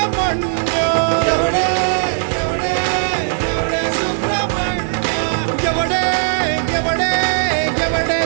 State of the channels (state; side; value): silent; left; digital silence